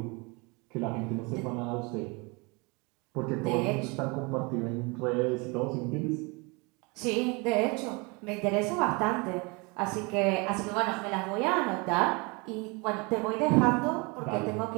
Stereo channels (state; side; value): quieter; left; 28.7 dB